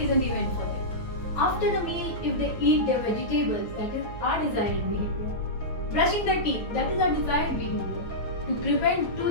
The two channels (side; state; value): right; late; 9.2 ms